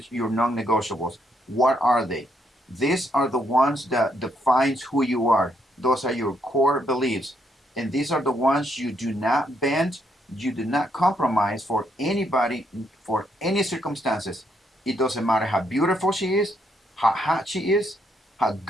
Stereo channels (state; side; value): normal; both; correlation 0.75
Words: your non-negotiables. What are they? These are the ones that defines who you are. Those are your core beliefs. And these are the ones you do not bend, you do not compromise for anybody, for any circumstances. It doesn't matter how beautiful she is, how hot she is, how